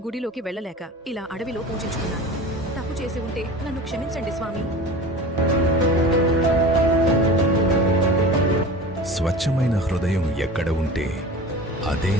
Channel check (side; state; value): both; normal; correlation 0.35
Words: గుడిలోకి వెళ్ళలేక ఇలా అడవిలో పూజించుకున్నాను. తప్పు చేసి ఉంటే నన్ను క్షమించండి స్వామి. స్వచ్ఛమైన హృదయం ఎక్కడ ఉంటే అదే